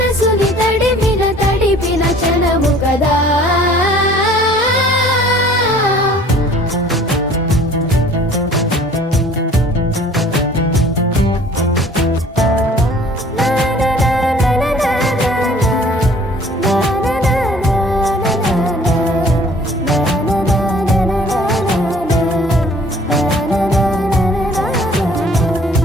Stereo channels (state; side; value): normal; both; correlation 0.53